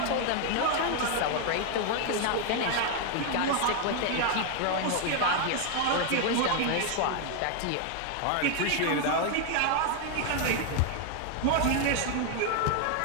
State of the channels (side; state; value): both; different; correlation 0.01